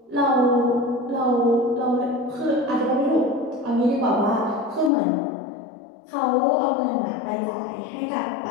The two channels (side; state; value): right; drops out; at 4.9 s